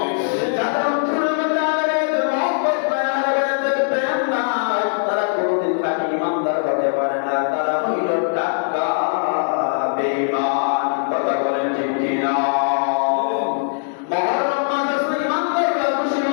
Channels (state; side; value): silent; right; 65 dB below the other